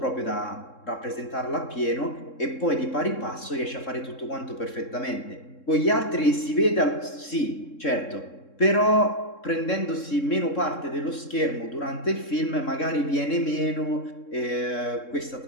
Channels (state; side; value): late; right; 3.7 ms